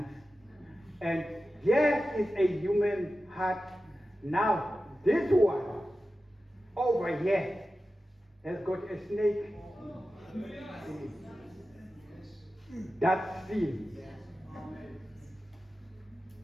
here is a human heart. Now, this one over here has got a snake. That's sin.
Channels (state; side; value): normal; both; correlation 0.93